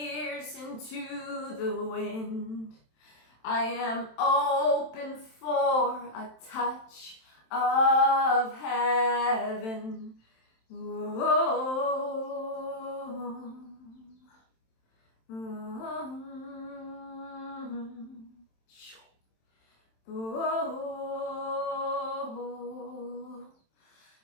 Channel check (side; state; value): right; late; 27 ms